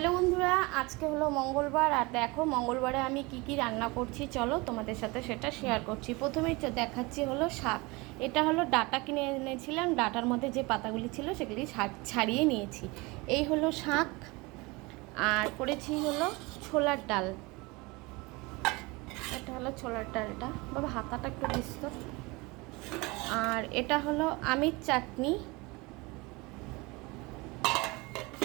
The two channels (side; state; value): left; quieter; 24.7 dB